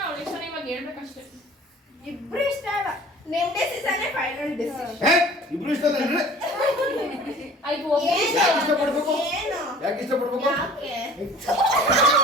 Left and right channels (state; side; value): normal; both; correlation 0.47